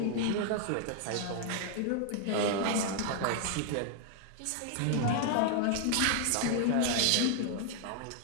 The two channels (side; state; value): both; different; correlation 0.00